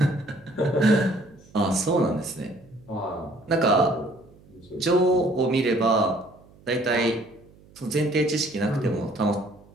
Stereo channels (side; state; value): right; noise; hum, 26 dB below the sound